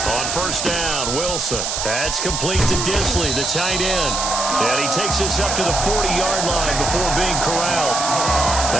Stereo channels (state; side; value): noise; right; hiss, 2 dB below the sound